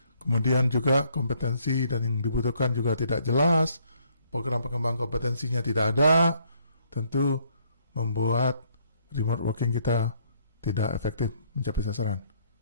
kemudian juga kompetensi dan yang dibutuhkan juga tidak jelas, program pengembang kompetensinya tidak ada, tentu membuat remote working kita tidak efektif mencapai sasaran.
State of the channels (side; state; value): both; inverted; correlation -0.67